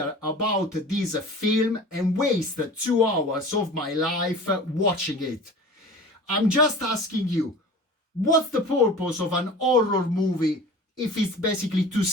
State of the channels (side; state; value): both; normal; correlation 0.39